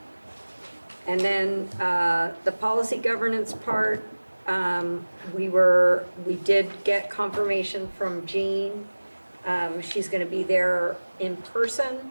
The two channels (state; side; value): inverted; both; correlation -1.00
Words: And then the policy governance part, we did get confirmation from Jean. She's going to be there in person,